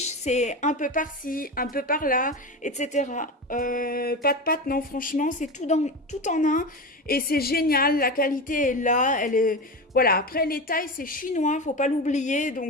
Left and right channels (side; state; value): both; normal; correlation 0.23